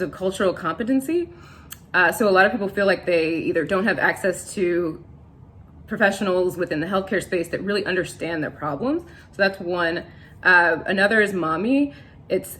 of cultural competency. So a lot of people feel like they either don't have access to professionals within the healthcare space that really understand their problems. So that's one. Another is Mommy. It's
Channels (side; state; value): both; identical; correlation 1.00